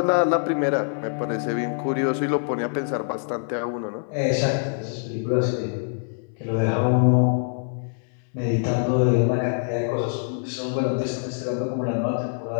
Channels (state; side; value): silent; right; 62 dB below the other